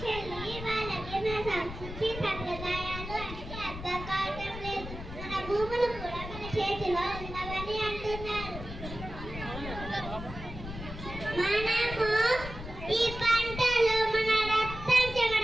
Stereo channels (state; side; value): noise; left; rumble, 10 dB below the sound